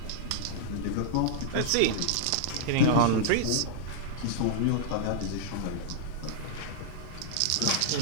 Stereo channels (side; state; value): both; different; correlation -0.01